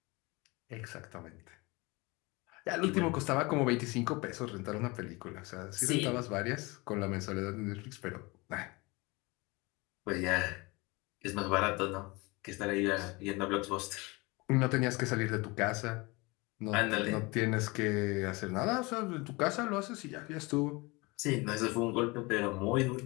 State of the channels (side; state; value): right; quieter; 25.2 dB